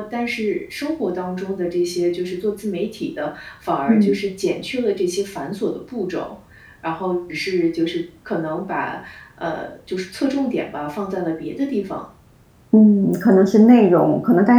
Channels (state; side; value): identical; both; correlation 1.00